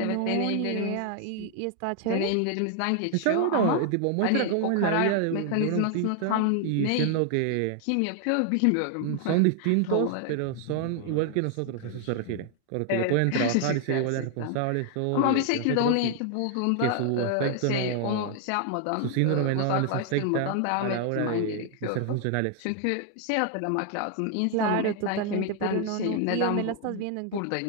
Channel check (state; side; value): different; both; correlation 0.00